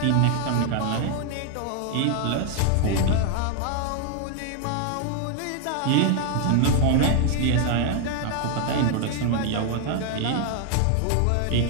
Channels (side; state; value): both; different; correlation 0.00